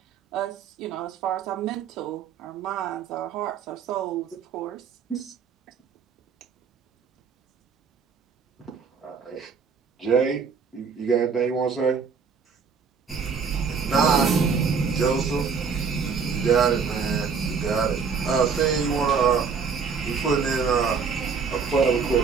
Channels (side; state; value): left; quieter; 5.8 dB